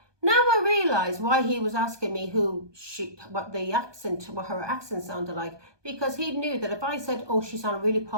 Now I realise why he was asking me what her accent sounded like. Because he knew that if I said, oh, she sounded really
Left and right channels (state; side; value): late; left; 1.2 ms